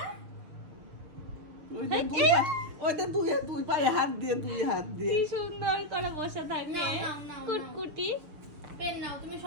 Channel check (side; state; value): left; late; 6.5 ms